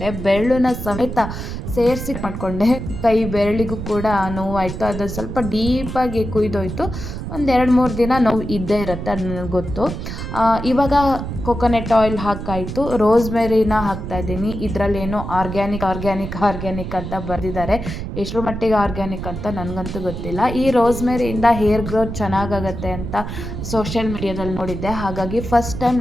ಬೆರಳನ್ನ ಸಮೇತ ಸೇರಿಸಿ ಮಾಡಿಕೊಂಡೆ. ಕೈ ಬೆರಳಿಗೂ ಕೂಡ ನೋವಾಯಿತು. ಅದು ಸ್ವಲ್ಪ ಡೀಪಾಗಿ ಕುಯ್ದೋಯ್ತು. ಒಂದು 2-3 ದಿನ ನೋವು ಇದ್ದೇ ಇರುತ್ತೆ, ಅದು ನನಗೆ ಗೊತ್ತು. ಇವಾಗ ಕೊಕೊನೆಟ್ ಆಯಿಲ್ ಹಾಕಾಯಿತು. ರೋಸ್ಮೆರಿನ ಹಾಕ್ತಾಯಿದ್ದೀನಿ. ಇದರಲ್ಲೇನೋ ಆರ್ಗ್ಯಾನಿಕ್ ಅಂತ ಬರೆದಿದ್ದಾರೆ. ಎಷ್ಟರ ಮಟ್ಟಿಗೆ ಆರ್ಗ್ಯಾನಿಕ್ ಅಂತ ನನಗಂತೂ ಗೊತ್ತಿಲ್ಲ. ಈ ರೋಸ್ಮೆರಿಯಿಂದ ಹೇರ್ ಗ್ರೋತ್ ಚೆನ್ನಾಗಾಗತ್ತೆ ಅಂತ ಸೋಷಿಯಲ್ ಮೀಡಿಯಾದಲ್ಲಿ ನೋಡಿದ್ದೆ. ಹಾಗಾಗಿ ಫಸ್ಟ್ ಟೈಮ್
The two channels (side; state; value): right; noise; rumble, 7 dB below the sound